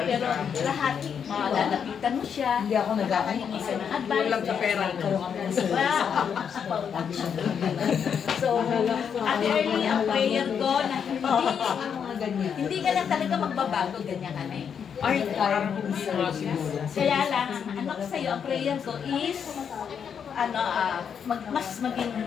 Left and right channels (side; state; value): right; quieter; 7.4 dB